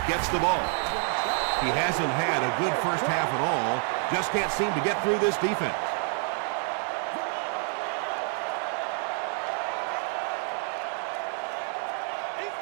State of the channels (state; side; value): quieter; left; 39.0 dB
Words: gets the ball. He hasn't had a good first half at all. Just can't seem to get through this defense.